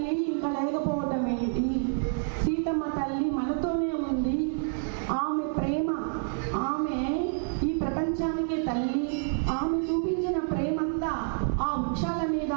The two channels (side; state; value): left; silent; digital silence